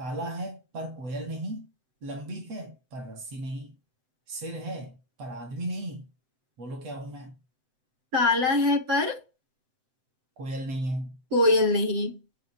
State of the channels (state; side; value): late; left; 7.8 ms